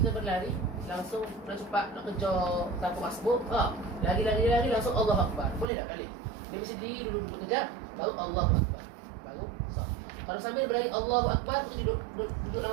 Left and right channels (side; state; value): left; drops out; at 5.7 s